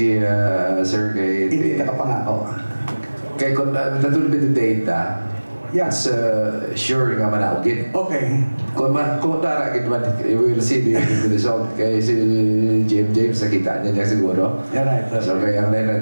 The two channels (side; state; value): both; inverted; correlation -1.00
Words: sir, Hindi ka kapangako. kay kung natulog yung data, Yes. sure nga manaogin. Okay. Kung taragin man, we will see the result. Kaya si James, nakita niya siguro. Yeah, right. So kaya ang